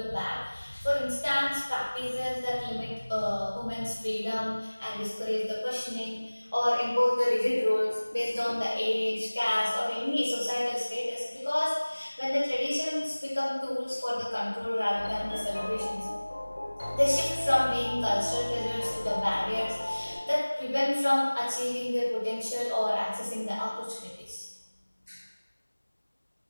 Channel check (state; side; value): inverted; both; correlation -1.00